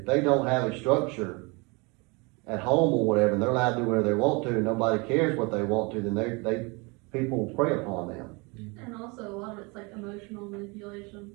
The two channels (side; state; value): left; quieter; 28.5 dB